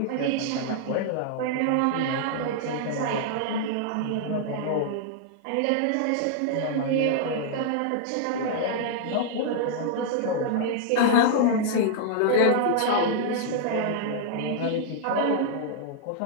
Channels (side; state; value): both; different; correlation -0.01